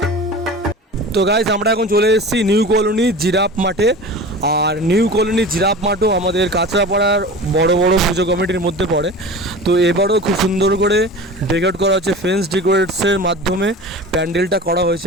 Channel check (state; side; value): normal; both; correlation 0.35